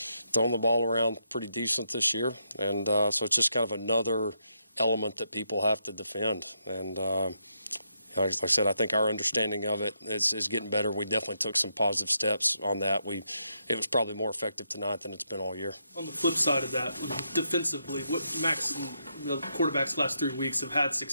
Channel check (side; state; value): both; inverted; correlation -0.80